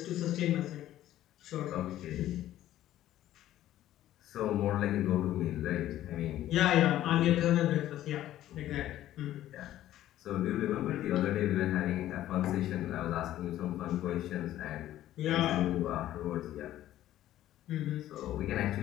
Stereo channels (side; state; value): right; quieter; 13.4 dB